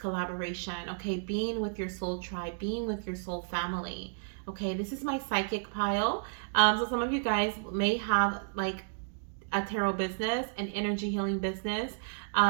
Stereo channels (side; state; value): left; silent; digital silence